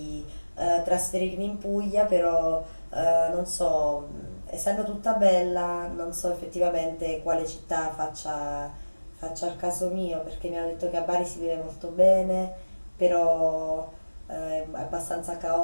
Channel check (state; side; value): inverted; both; correlation -1.00